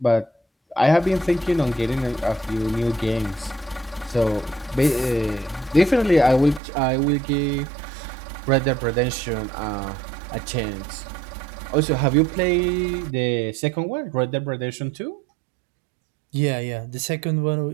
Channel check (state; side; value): drops out; left; at 6.6 s